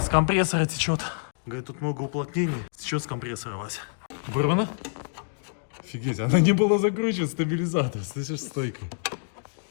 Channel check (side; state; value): right; silent; digital silence